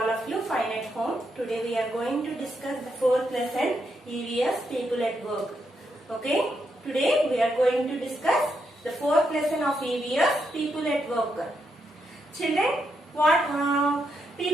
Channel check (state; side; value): normal; both; correlation 0.81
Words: of you fine at home. Today we are going to discuss the fourth lesson, EVS, People at Work. Okay, today we are going to discuss the fourth lesson of EVS, People at Work. Children, what